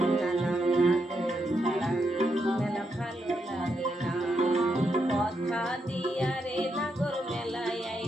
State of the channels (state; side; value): normal; both; correlation 0.81